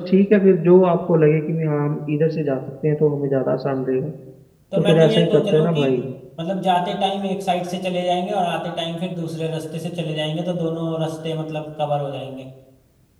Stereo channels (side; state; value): both; identical; correlation 1.00